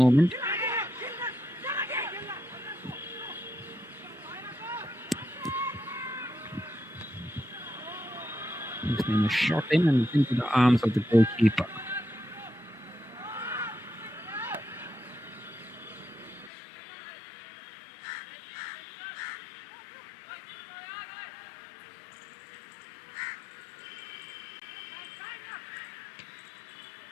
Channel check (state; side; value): drops out; right; at 16.5 s